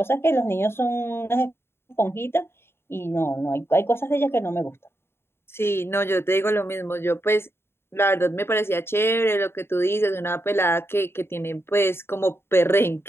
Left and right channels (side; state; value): right; late; 0.12 ms